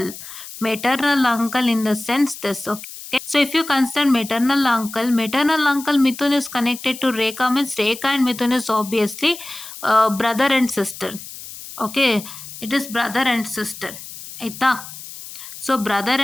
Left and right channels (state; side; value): noise; left; hiss, 13 dB below the sound